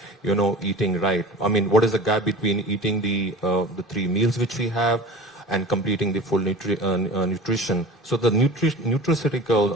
eating right. I mean, what is the gap between eating the 3 meals which we have and completing the full nutrition? So the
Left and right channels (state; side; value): normal; both; correlation 0.38